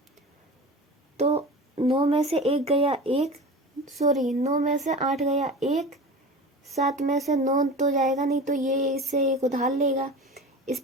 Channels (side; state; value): both; normal; correlation 0.33